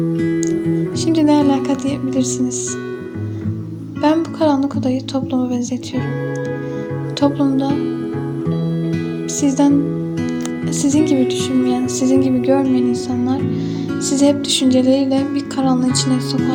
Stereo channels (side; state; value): both; identical; correlation 1.00